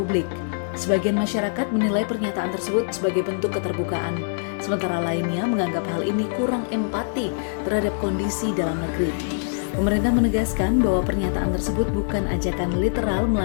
Sebagian masyarakat menilai pernyataan tersebut sebagai bentuk keterbukaan, sementara lainnya menganggap hal ini kurang empati terhadap kondisi dalam negeri. Pemerintah menegaskan bahwa pernyataan tersebut bukan ajakan literal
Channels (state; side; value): silent; right; digital silence